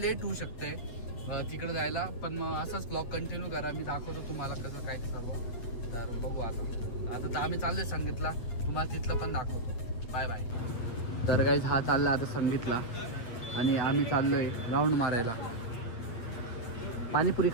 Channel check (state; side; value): late; right; 8.8 ms